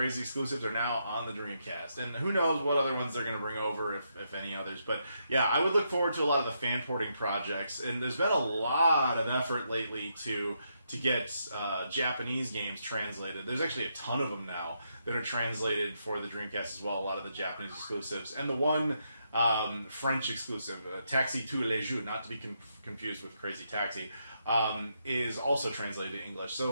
exclusives are now on the Dreamcast, and who knows what other ones they're going to bring over, if any others. But yeah, I would look forward to a lot of the fan porting projects, and there's been a lot of effort lately to get Japanese games translated. There's actually a ton of them now that are translated for the Dreamcast as well, a lot of the Japanese exclusives. And the one French exclusive, Taxi tous les jours, not to be confused with Crazy Taxi, is also translated to English.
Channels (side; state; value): both; inverted; correlation -0.79